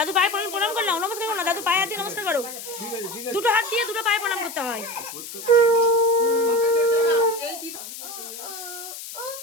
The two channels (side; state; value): left; noise; hiss, 11 dB below the sound